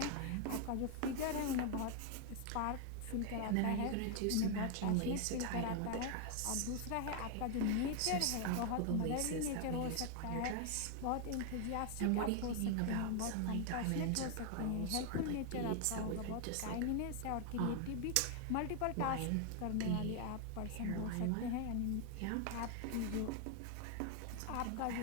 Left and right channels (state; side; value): different; both; correlation 0.00